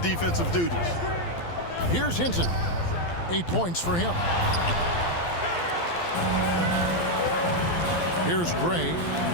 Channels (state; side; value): late; right; 12 ms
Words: duties. Here's Hinton. 8 points for him. Here's Gray.